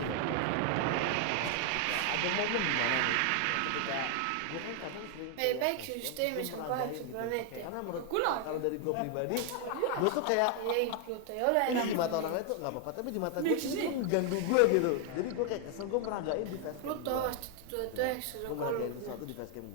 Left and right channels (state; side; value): different; both; correlation 0.00